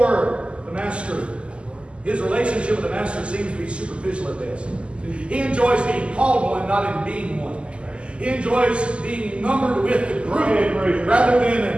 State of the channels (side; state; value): left; late; 0.054 ms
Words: the master. His relationship with the master seems to be superficial at best. He enjoys being called one, not in being one. He enjoys being numbered with the group rather